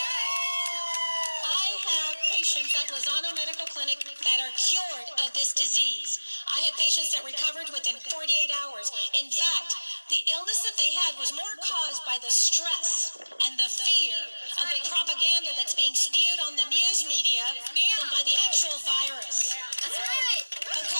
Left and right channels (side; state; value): both; inverted; correlation -1.00